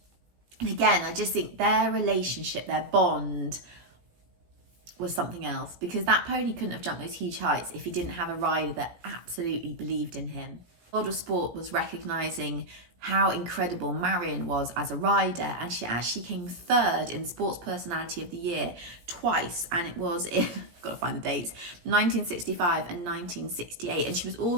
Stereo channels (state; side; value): late; left; 17 ms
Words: And again, I just think their relationship, their bond, was something else, because that pony couldn't have jumped those huge heights if he didn't have a rider that absolutely believed in him. The World of Sport was recognising how incredible Marion was as a rider, and she actually came third in Sports Personality of the Year twice, and it was in, got to find the dates, 1965 and 1968, and she was